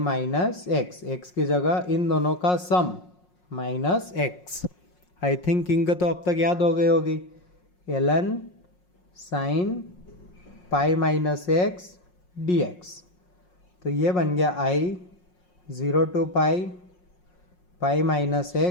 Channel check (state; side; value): late; right; 5.5 ms